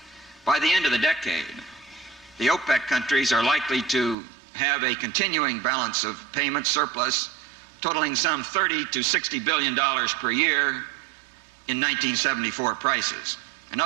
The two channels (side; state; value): left; drops out; at 4.2 s